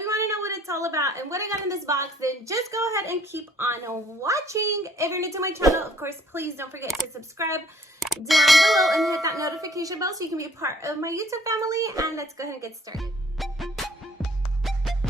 want to know what it's all about and what I got in this box, then just go ahead and keep on watching. If you're new to my channel, of course, please don't forget to subscribe down below and hit that notification bell so you can be a part of my YouTube family. And let's go ahead and get started.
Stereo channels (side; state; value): both; normal; correlation 0.59